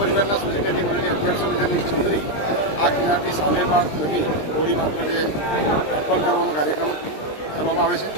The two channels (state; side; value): late; right; 20 ms